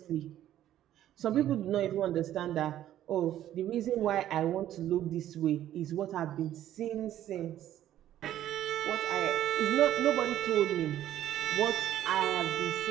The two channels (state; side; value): quieter; left; 12.3 dB